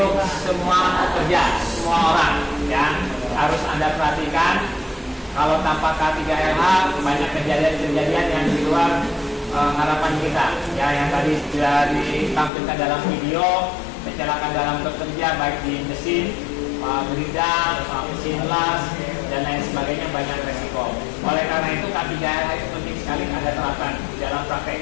semua pekerja, semua orang ya. Harus Anda perhatikan, kalau tanpa K3LH banyak kejadian-kejadian yang di luar harapan kita ya, yang tadi sudah ditampilkan dalam video. Kecelakaan dalam bekerja baik di mesin, bidang, mesin las, dan lain sebagainya, banyak resiko. Oleh karena itu K3LH itu penting sekali Anda terapkan di dalam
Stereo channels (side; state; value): right; drops out; at 12.5 s